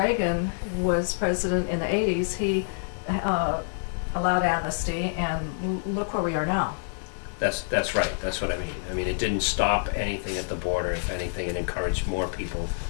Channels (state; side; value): silent; right; 60 dB below the other